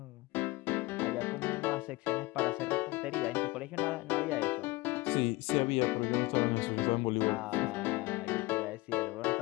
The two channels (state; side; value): quieter; right; 22.0 dB